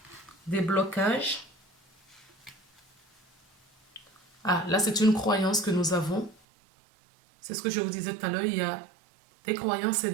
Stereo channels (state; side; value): drops out; left; at 6.4 s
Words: des blocages. Ah, là, c'est une croyance que nous avons. C'est ce que je vous disais tout à l'heure. Il y a des croyances et